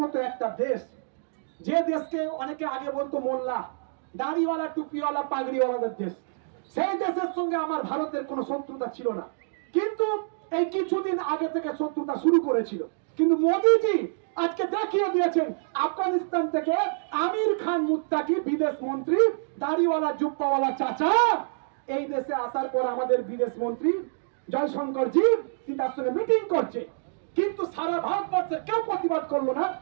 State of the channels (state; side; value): silent; left; digital silence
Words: মতো একটা দেশ, যে দেশকে অনেকে আগে বলতো মোল্লা, দাড়িওয়ালা, টুপিওয়ালা, পাগড়িওয়ালাদের দেশ। সেই দেশের সঙ্গে আমার ভারতের কোনো শত্রুতা ছিল না, কিন্তু এই কিছুদিন আগে থেকে শত্রুতা শুরু করেছিল। কিন্তু মোদিজি আজকে দেখিয়ে দিয়েছেন, আফগানিস্তান থেকে আমির খান মুত্তাকি বিদেশ মন্ত্রী, দাড়িওয়ালা জুব্বাওয়ালা চাচা, এই দেশে আসার পর আমাদের বিদেশ মন্ত্রী জয়শঙ্কর জি তার সঙ্গে মিটিং করছে, কিন্তু সারা ভারতবর্ষের কেউ প্রতিবাদ করলো না।